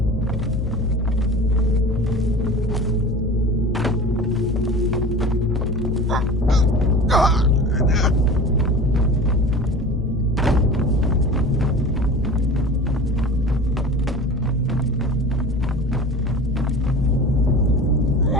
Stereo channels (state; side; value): normal; both; correlation 0.37